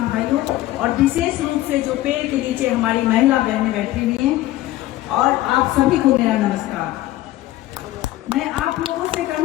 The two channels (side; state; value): right; quieter; 15.7 dB